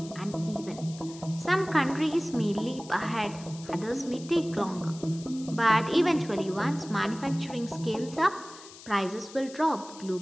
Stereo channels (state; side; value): noise; left; hiss, 18 dB below the sound